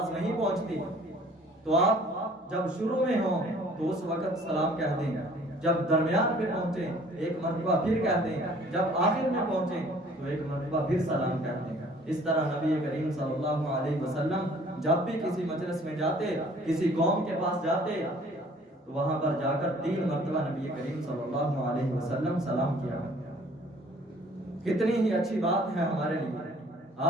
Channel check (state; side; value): normal; both; correlation 0.55